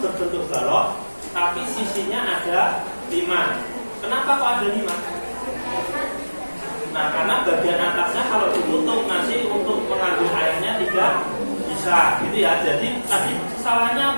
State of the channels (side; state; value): both; inverted; correlation -1.00